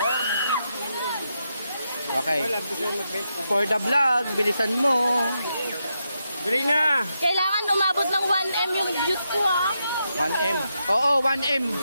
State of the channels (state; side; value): inverted; both; correlation -0.84